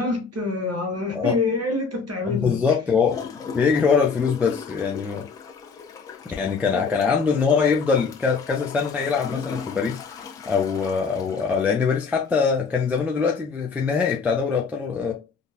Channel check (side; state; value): right; quieter; 5.2 dB